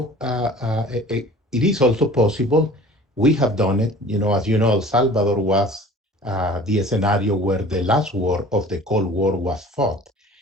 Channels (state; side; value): normal; both; correlation 0.46